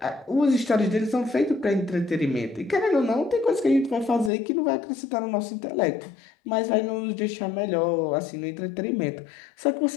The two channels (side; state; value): right; drops out; at 4.3 s